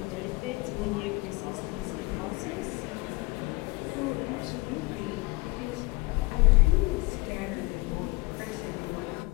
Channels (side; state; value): right; quieter; 23.9 dB